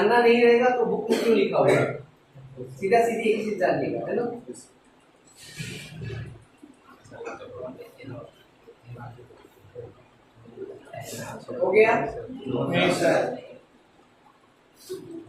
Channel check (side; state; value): both; identical; correlation 1.00